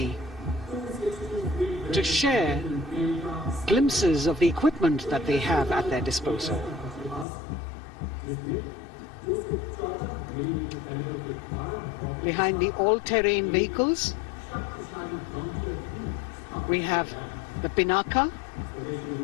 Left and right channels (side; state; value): right; drops out; at 7.2 s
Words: to share glimpses of the equipment that they have at their disposal. Behind the all-terrain vehicles, we have the Pinaka